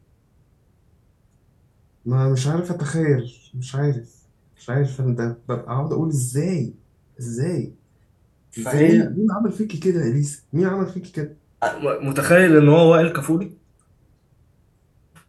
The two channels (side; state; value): both; identical; correlation 1.00